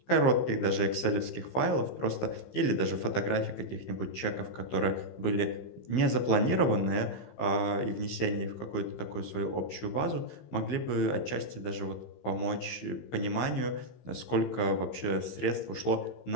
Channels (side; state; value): right; late; 15 ms